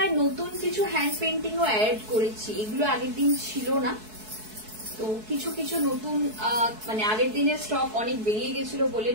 নতুন কিছু হ্যান্ড পেন্টিং ও অ্যাড করেছি, এগুলো আগের দিন ছিল না। তো কিছু কিছু নতুন মানে আগের দিনের স্টক অনেক বেরিয়ে গেছিল বলে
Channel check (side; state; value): left; late; 4.6 ms